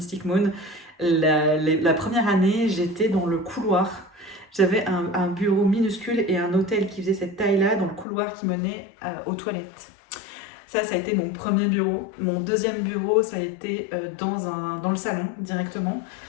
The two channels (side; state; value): right; drops out; at 8.1 s